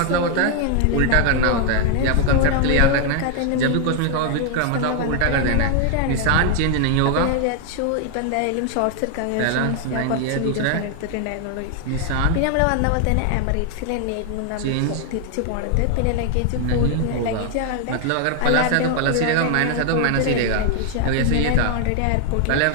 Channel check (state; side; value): different; both; correlation 0.00